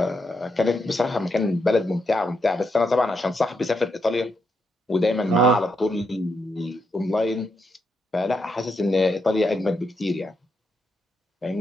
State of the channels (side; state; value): both; normal; correlation 0.81